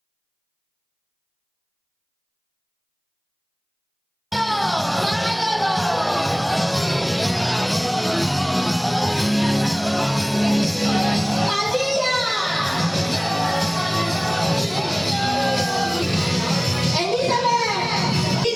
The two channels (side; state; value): both; identical; correlation 1.00